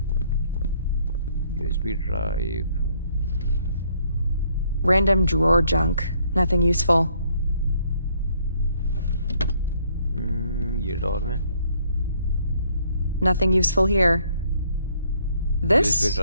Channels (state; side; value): inverted; both; correlation -0.66